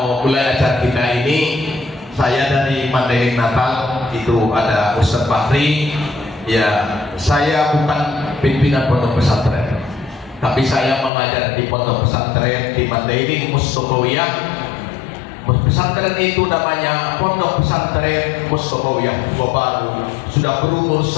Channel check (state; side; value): drops out; right; at 11.1 s